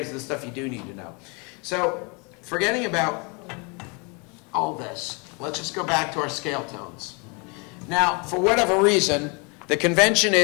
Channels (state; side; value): quieter; right; 31.8 dB